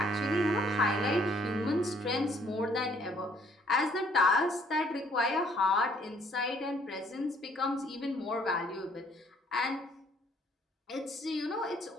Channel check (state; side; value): normal; both; correlation 0.63